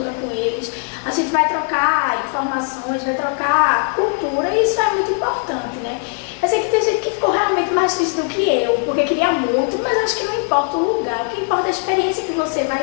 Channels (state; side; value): quieter; right; 36.5 dB